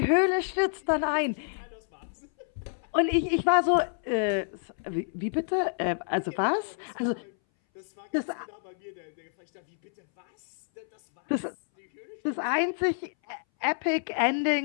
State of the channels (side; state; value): right; silent; 59 dB below the other